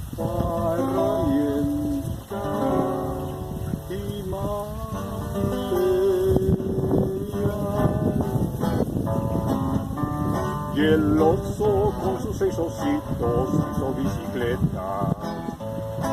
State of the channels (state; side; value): identical; both; correlation 1.00